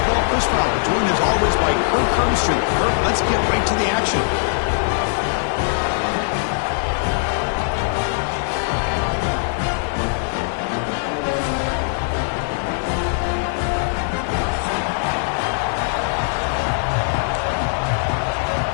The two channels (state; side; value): silent; right; digital silence